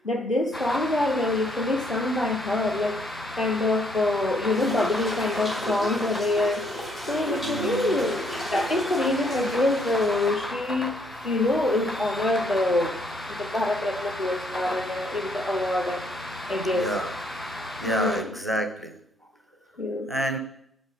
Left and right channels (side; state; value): both; normal; correlation 0.68